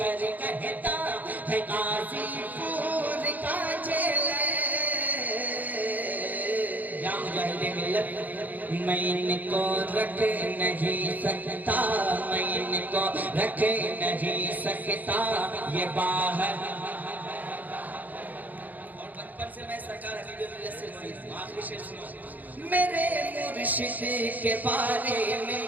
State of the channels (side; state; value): left; late; 0.082 ms